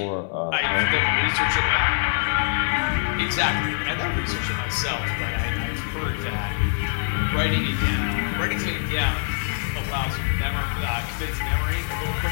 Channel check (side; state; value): right; silent; 62 dB below the other